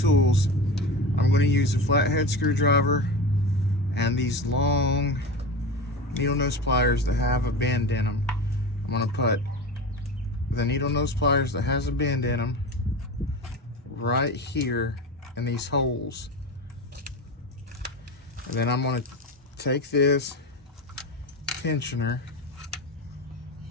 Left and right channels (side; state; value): both; normal; correlation 0.27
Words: I'm going to use a flathead screwdriver and these long needle nose pliers that have a bend in them. I'm going to put the needle nose pliers that has a bend in them right here in these holes. And then I'm going to take this tensioner.